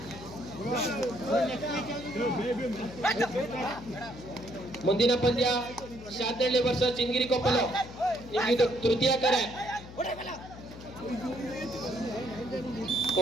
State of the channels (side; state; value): left; noise; hum, 15 dB below the sound